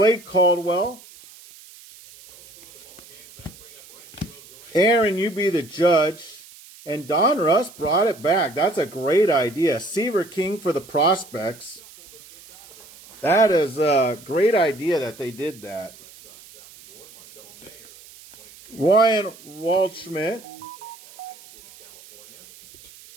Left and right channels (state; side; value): noise; right; hiss, 22 dB below the sound